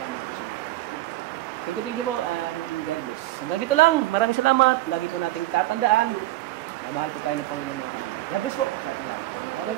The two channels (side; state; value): left; quieter; 16.8 dB